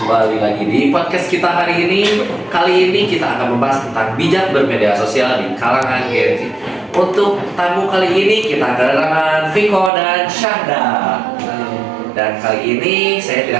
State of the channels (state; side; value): drops out; left; at 9.9 s